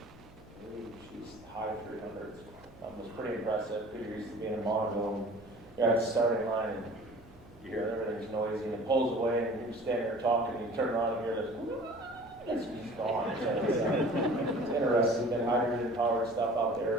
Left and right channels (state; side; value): noise; right; hum, 24 dB below the sound